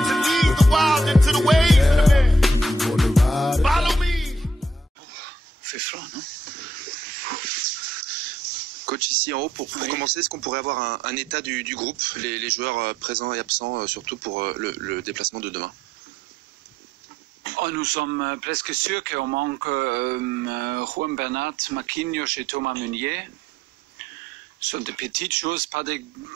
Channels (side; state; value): both; normal; correlation 0.71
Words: to lead the wild into the ways of the man. Follow me. Fait froid, non? Coach, ici en haut, pour commencer, est-ce qu'on pourrait avoir un état du groupe, les joueurs présents et absents, surtout pour le déplacement de demain? Nous sommes presque sûrs qu'on manque Juan Bernat, Marquinhos et Thomas Meunier. Ce sont des petites choses, pas des